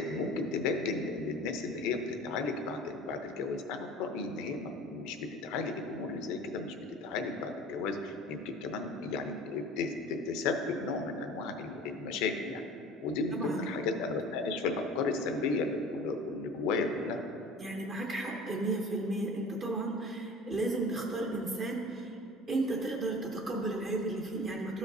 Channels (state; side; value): normal; both; correlation 0.41